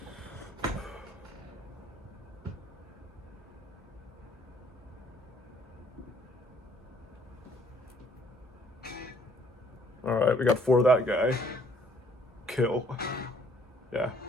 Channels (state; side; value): normal; both; correlation 0.62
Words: All right, we got 4 of that guy. Kill. Yeah,